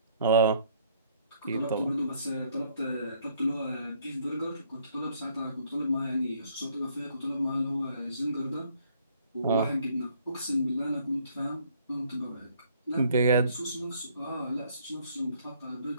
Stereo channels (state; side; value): inverted; both; correlation -0.64